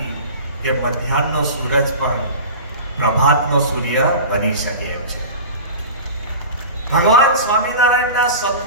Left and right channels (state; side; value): inverted; both; correlation -0.34